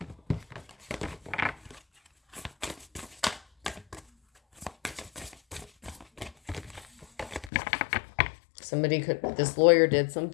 This lawyer did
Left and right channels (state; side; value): drops out; right; at 7.5 s